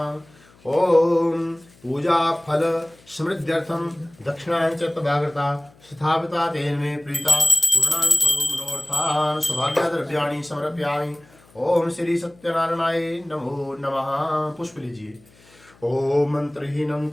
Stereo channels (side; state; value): left; noise; hum, 28 dB below the sound